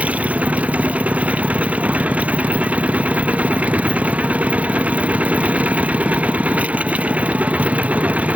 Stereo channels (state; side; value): late; left; 0.068 ms